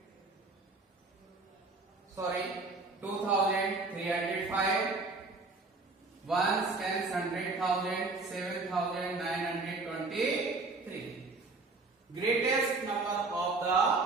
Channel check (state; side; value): quieter; left; 3.6 dB